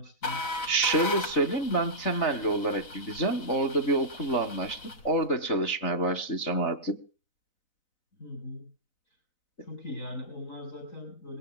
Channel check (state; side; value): late; right; 4.0 ms